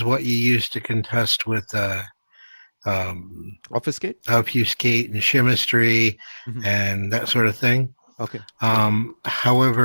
what you use to contest with obfuscate and chemistry and that sort of thing. Okay.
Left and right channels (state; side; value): inverted; both; correlation -1.00